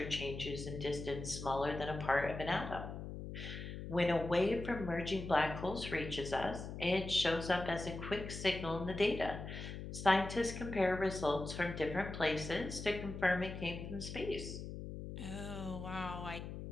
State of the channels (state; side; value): noise; left; hum, 8 dB below the sound